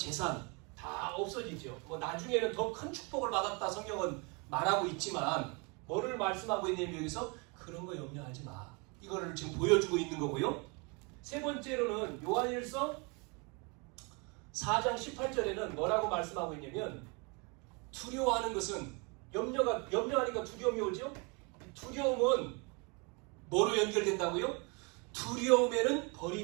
다 없어지죠. 뭐 나중에는 더 큰 축복을 받았다 성경은 말하고 있지만 뭐를 말씀하고 있냐면 여기서 그런 거 염려하지 마. 이거를 지금 보여주고 있는 거고요. 세 번째로는 요한일서 4장 18절에는 뭐라고 말씀하고 있냐면 두려워하는 것은 염려하니까 두려움이 오죠. 두려움은 뭐로 연결된다고요? 두려움에는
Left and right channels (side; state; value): left; quieter; 31.2 dB